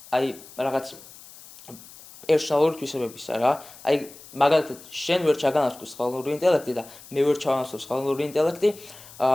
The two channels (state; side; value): noise; left; hiss, 19 dB below the sound